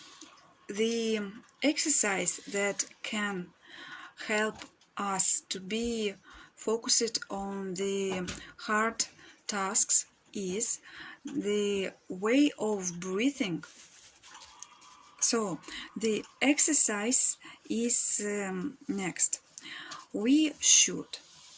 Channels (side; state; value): both; identical; correlation 1.00